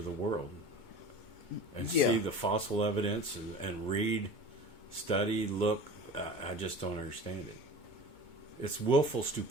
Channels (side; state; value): right; late; 2.2 ms